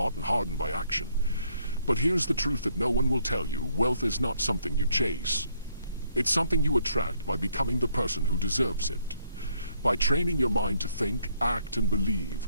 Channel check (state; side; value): inverted; both; correlation -0.69